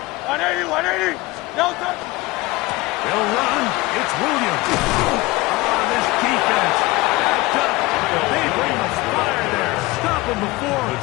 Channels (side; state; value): right; quieter; 21.2 dB